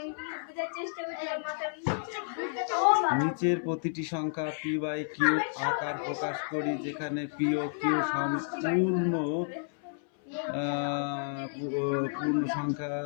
নিচের প্রতিটি সংখ্যা p/q আকার প্রকাশ করি, যেখানে p ও q সম্পূর্ণ পূর্ণ সংখ্যা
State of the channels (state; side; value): silent; right; 57 dB below the other